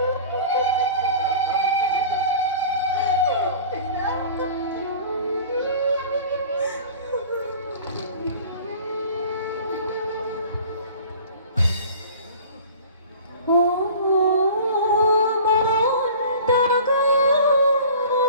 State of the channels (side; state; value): both; inverted; correlation -0.42